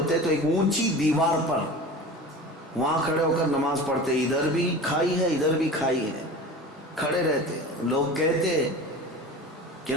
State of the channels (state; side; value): normal; both; correlation 0.35